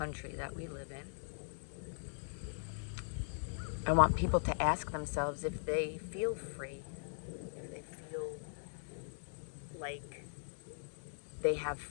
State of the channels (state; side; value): silent; right; digital silence